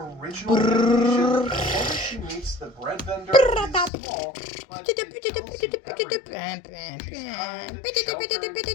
original animation, the moment she meets the bread vendor is small, but it tells you everything. She's kind,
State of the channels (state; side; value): drops out; right; at 3.9 s